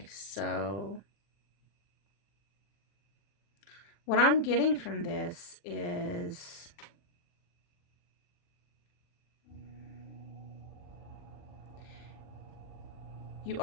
so what I'm getting from this is you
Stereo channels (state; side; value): late; right; 40 ms